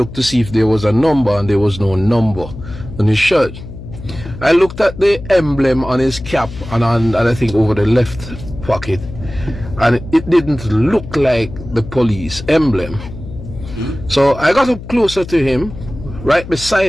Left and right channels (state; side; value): noise; left; hum, 12 dB below the sound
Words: to see if there was a number, and there was no number on his shirt. I looked at the emblem on his cap and I think over the left pocket, and it didn't look like the police emblem. So I got up closer to him, right